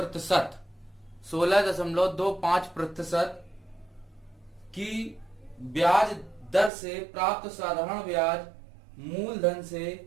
की ब्याज दर से प्राप्त साधारण ब्याज मूलधन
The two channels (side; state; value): left; drops out; at 6.7 s